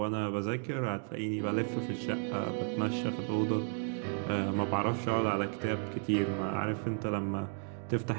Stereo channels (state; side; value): silent; left; 55 dB below the other